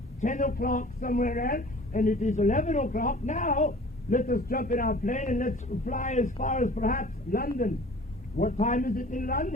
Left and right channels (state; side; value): normal; both; correlation 0.46